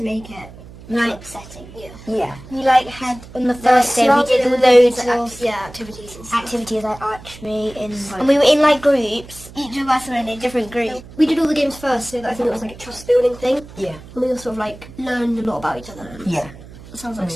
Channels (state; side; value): noise; right; hum, 18 dB below the sound